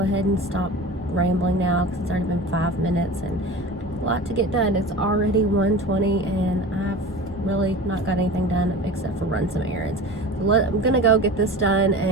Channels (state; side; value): normal; both; correlation 0.34